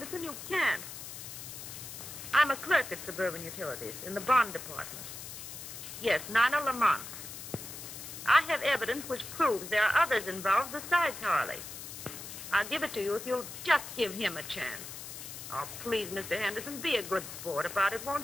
You can't. I'm a clerk at Suburban Utilities in the bond department. Yes, Nina Lamont. I have evidence which proves there are others involved besides Harley. I'll give it to you if you'll just give him a chance. Oh, please, Mr. Henderson, be a good sport about it,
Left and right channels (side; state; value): left; noise; hiss, 10 dB below the sound